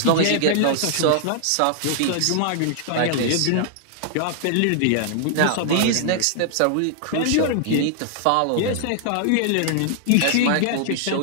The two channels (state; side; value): different; both; correlation -0.01